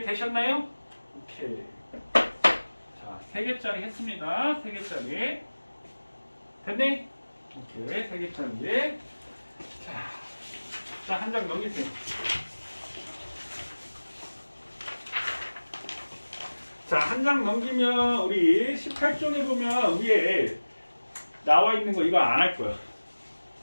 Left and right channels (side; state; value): both; inverted; correlation -1.00